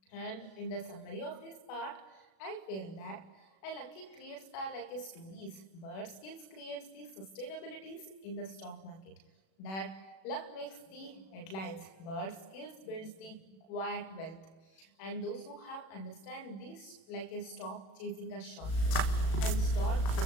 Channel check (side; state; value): right; late; 36 ms